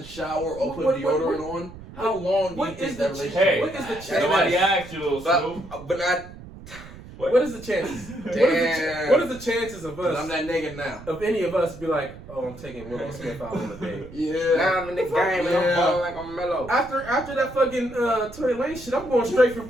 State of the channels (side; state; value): right; noise; rumble, 16 dB below the sound